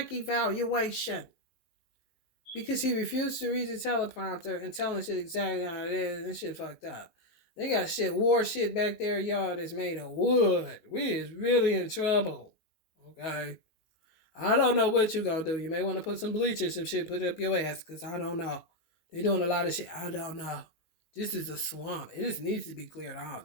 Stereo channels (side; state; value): right; late; 19 ms